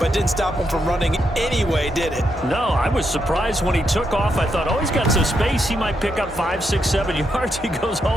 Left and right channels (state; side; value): normal; both; correlation 0.81